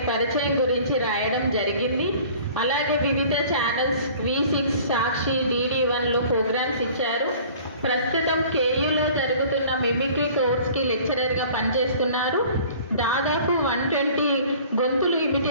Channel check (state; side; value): inverted; both; correlation -0.48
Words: పరిచయం గురించి రాయడం జరిగింది. అలాగే వివిధ ఛానల్స్ V6, సాక్షి, DD1లో ప్రోగ్రామ్స్ ఇచ్చారు. ప్రస్తుతం KUలో జరుగుతున్న మిమిక్రీ కోర్స్కి లెక్చరర్గా పనిచేస్తున్నారు. దాదాపు 120 గొంతులు